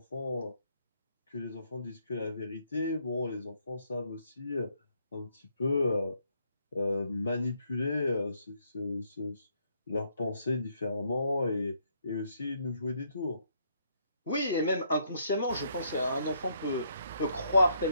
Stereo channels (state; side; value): inverted; both; correlation -0.72